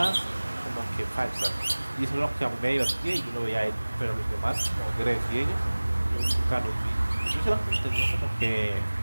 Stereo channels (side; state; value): both; inverted; correlation -1.00